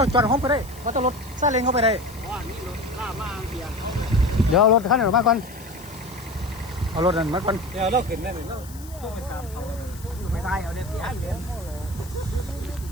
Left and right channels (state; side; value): noise; left; hiss, 19 dB below the sound